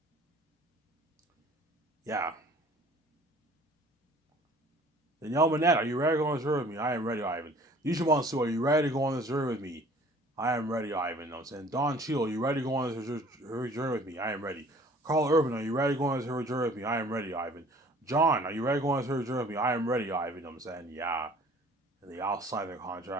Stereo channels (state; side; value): normal; both; correlation 0.52